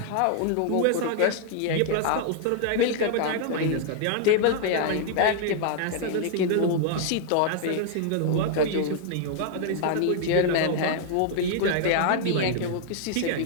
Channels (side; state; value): both; different; correlation 0.00